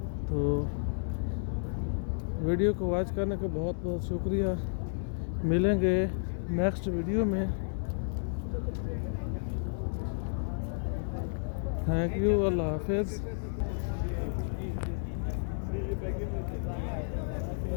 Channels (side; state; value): right; silent; digital silence